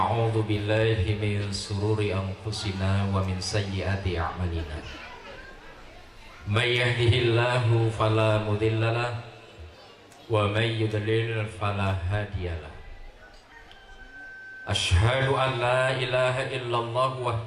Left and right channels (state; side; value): identical; both; correlation 1.00